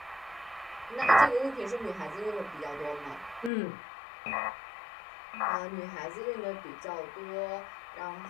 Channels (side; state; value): right; drops out; at 3.5 s